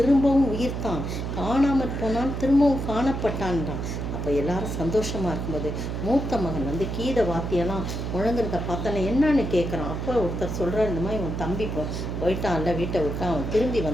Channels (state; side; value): noise; right; hum, 4 dB below the sound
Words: உயிர்த்தான். காணாமற் போனான், திரும்பவும் காணப்பட்டான்றான். அப்போ எல்லாரும் சந்தோஷமாக இருக்கும்போது மூத்த மகன் வந்து கீத வாத்தியெல்லாம் முழங்குறத பார்த்தோன்னே என்னன்னு கேட்குறான். அப்போ ஒருத்தர் சொல்கிறார், இந்த மாதிரி உன் தம்பி போயிட்டான்ல, வீட்டை விட்டு அவன் திரும்பி